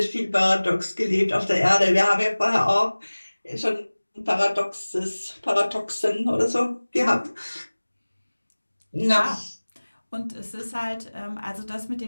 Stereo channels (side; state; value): both; inverted; correlation -1.00